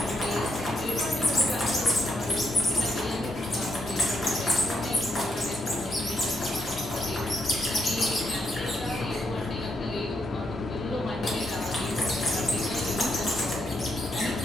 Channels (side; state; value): both; normal; correlation 0.78